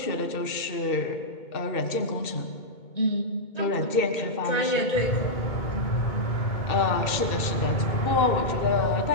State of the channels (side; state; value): right; late; 2.2 ms